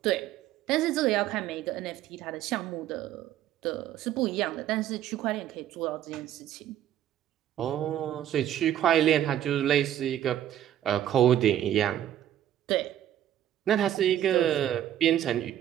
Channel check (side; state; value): left; quieter; 11.5 dB